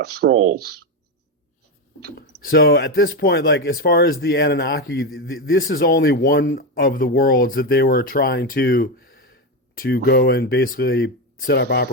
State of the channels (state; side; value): normal; both; correlation 0.11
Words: scrolls. So at this point, like as far as the Anunnaki, this is only one of the worlds that they were trying to go and basically set up